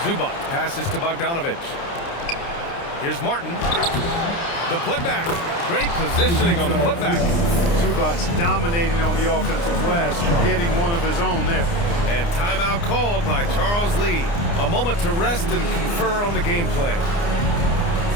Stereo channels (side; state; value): right; late; 29 ms